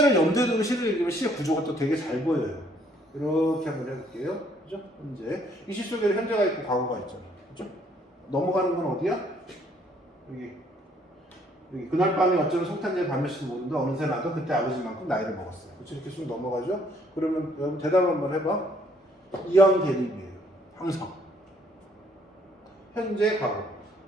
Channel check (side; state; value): both; normal; correlation 0.65